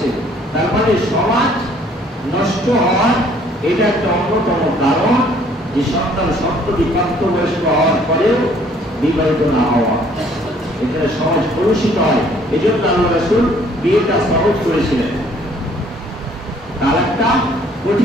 তার মানে সমাজ নষ্ট হওয়ার এটা একটা অন্যতম কারণ, যে সন্তান সপ্তমী প্রাপ্তবয়স্ক হওয়ার পরেও বিবাহিত না হওয়া। এখানে সমাজ কলুষিত হয়। এই জন্য আল্লাহ রাসূল বিয়েটা সহজ করেছিলেন, তালাকটা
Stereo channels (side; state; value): both; normal; correlation 0.60